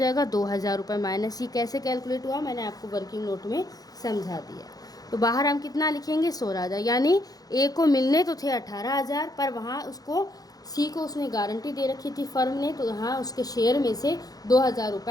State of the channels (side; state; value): right; late; 0.18 ms